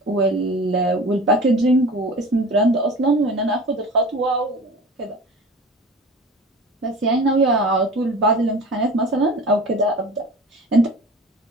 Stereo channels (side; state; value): both; normal; correlation 0.38